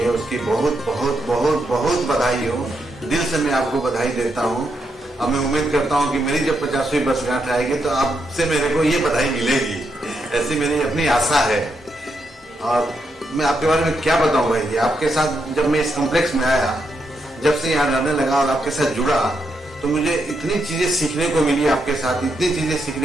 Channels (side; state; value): both; normal; correlation 0.81